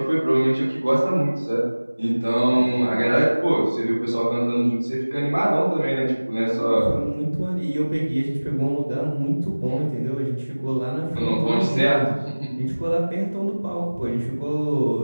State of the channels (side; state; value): both; inverted; correlation -1.00